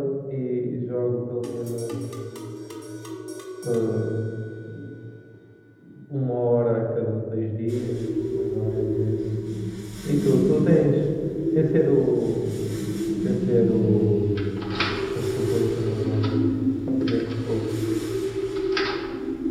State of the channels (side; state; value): both; identical; correlation 1.00